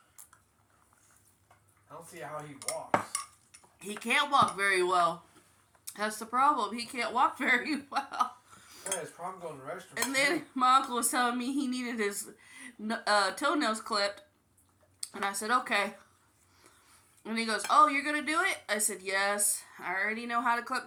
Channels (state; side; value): identical; both; correlation 1.00